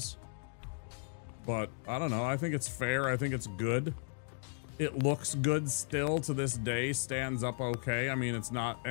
But, I don't know, I think it's fair, I think it's good. It looks good still to this day, stands up okay. I mean, it's not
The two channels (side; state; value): right; silent; 54 dB below the other